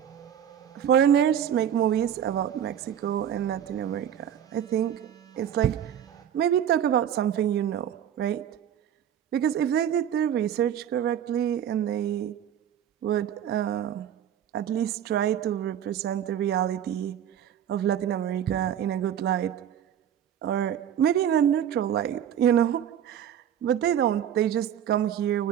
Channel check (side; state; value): left; quieter; 9.7 dB